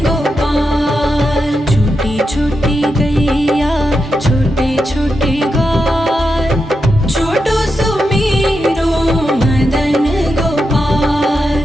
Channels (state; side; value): normal; both; correlation 0.87